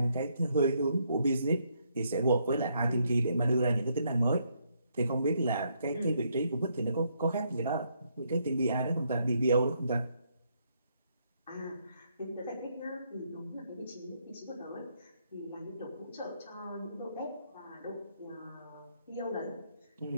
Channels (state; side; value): inverted; both; correlation -0.74